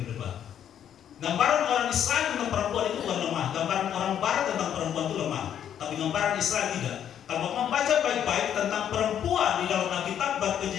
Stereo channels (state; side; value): quieter; right; 9.6 dB